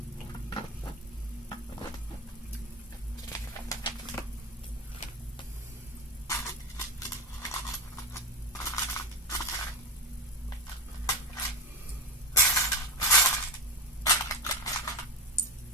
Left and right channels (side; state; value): both; normal; correlation 0.18